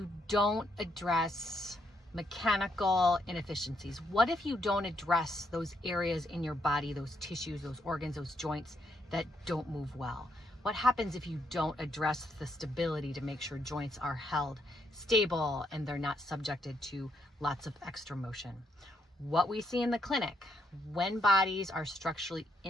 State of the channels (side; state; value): both; normal; correlation 0.76